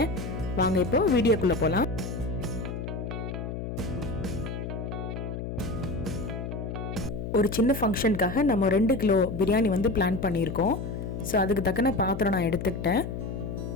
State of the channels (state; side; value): noise; left; hum, 6 dB below the sound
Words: வாங்க இப்போ வீடியோக்குள்ள போலாம். ஒரு சின்ன ஃபங்க்ஷனுக்காக நம்ம 2 கிலோ பிரியாணி பிளான் பண்ணியிருக்கோம். ஸோ அதுக்கு தக்கன பாத்திரம் நான் எடுத்துக்கிட்டேன்.